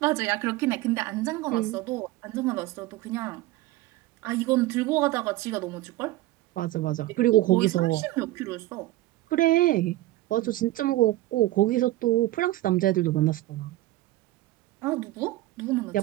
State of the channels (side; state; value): left; quieter; 16.7 dB